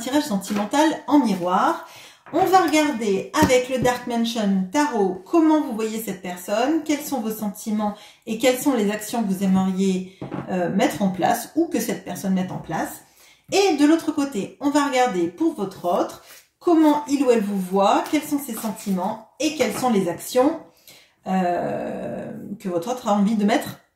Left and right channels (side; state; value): both; identical; correlation 1.00